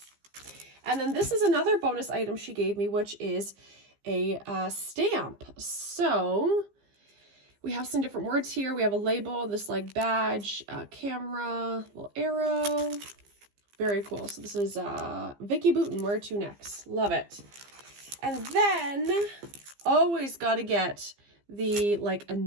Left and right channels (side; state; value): left; late; 15 ms